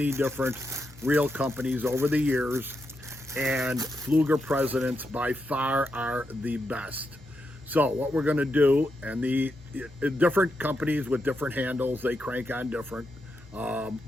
different reel companies over the years, and Pflueger Presidents by far are the best. So what we're going to do, and the different companies with different handles, they crank on different.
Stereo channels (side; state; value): both; normal; correlation 0.84